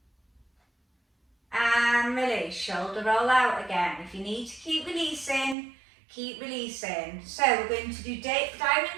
And release, shoulder roll out again. If you need to keep releasing, keep releasing. So we're going to do diamond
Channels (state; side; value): drops out; left; at 5.6 s